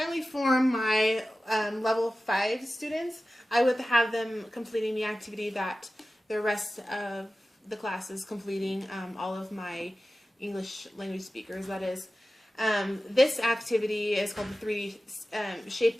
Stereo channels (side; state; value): both; normal; correlation 0.95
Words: for my level 5 students, I would have them completing the activity that the rest of the class is completing, all of my English language speakers, that is. This activity is called the 3D